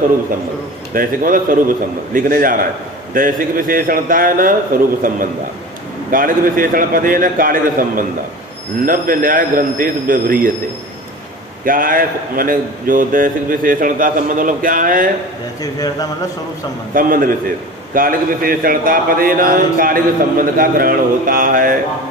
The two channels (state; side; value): normal; both; correlation 0.35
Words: संबंध, दैसिक मतलब स्वरूप संबंध लिखने जा रहा है। दैसिक विशेषणता है न स्वरूप संबंध, कालिक विशेषण पदे न कालिक संबंध। नव्य न्याय ग्रंथेश व्यवह्रियते। क्या है? माने जो दैसिक विशेषणता संबंध मतलब क्या है? दैसिक विशेषणता मतलब स्वरूप संबंध, संबंध विशेष। कालिक विशेषणता पदे न कालिक संबंध का ग्रहण होता है।